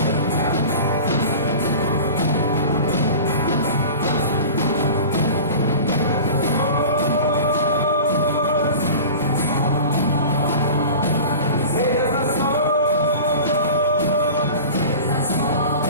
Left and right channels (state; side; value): inverted; both; correlation -0.36